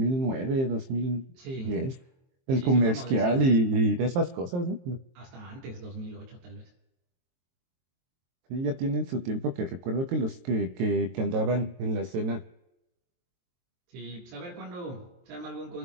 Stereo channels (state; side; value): late; left; 23 ms